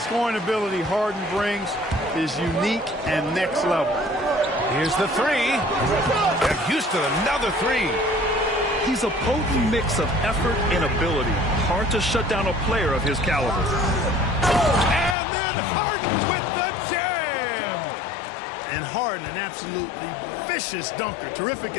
ability Harden brings is unique and next level. Here's the 3. And Houston, another 3. He's a potent mix of effort and ability. Hard to shut down a player of his caliber. And then Harden with the jam. And Harden, an absolutely vicious dunker. Terrific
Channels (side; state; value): right; drops out; at 15.2 s